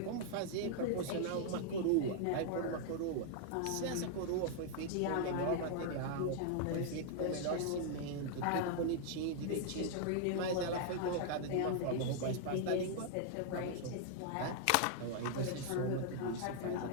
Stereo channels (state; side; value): different; both; correlation 0.00